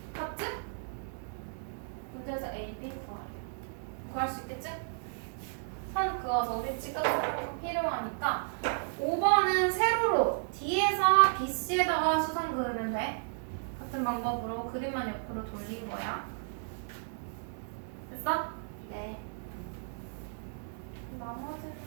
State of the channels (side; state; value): left; silent; digital silence